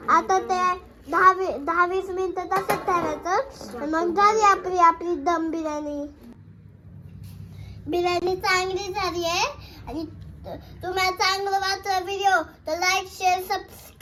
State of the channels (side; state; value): both; identical; correlation 1.00